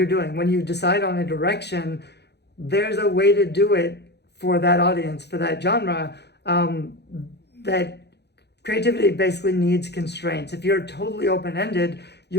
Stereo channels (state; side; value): late; right; 0.49 ms